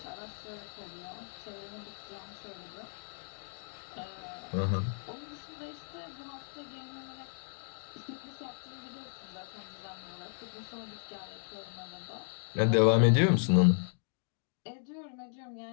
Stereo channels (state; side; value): silent; right; digital silence